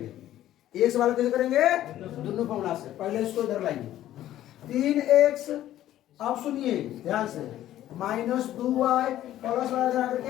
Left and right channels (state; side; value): quieter; right; 13.0 dB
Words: एक सवाल कैसे करेंगे? दोनों फॉर्मूला से। पहले इसको इधर लाइए, 3x, अब सुनिए ध्यान से, -2y प्लस वाला